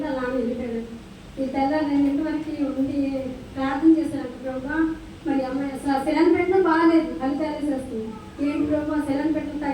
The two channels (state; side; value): identical; both; correlation 1.00